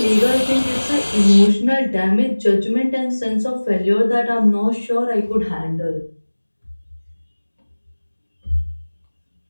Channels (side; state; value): both; inverted; correlation -1.00